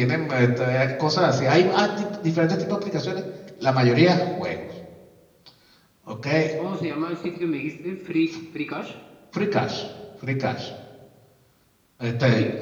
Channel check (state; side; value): identical; both; correlation 1.00